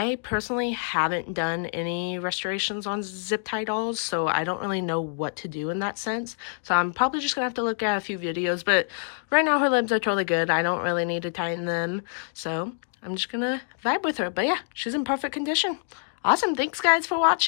personally haven't done any restorations on zip tie dolls, so I don't really know what to do in that sense. So I'm probably just gonna have to look at a few videos, but right now her limbs are totally good. I don't really need to tighten them, so I'm just gonna vibe with her. But yeah, she's in perfect condition. Awesome, thanks guys for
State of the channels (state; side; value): silent; right; digital silence